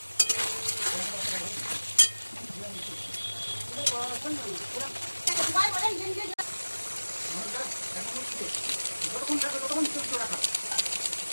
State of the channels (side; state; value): both; inverted; correlation -1.00